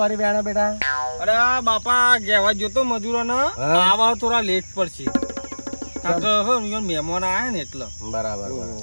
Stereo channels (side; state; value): both; inverted; correlation -1.00